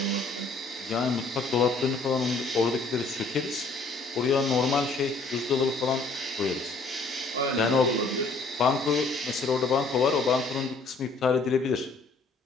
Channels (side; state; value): right; quieter; 3.6 dB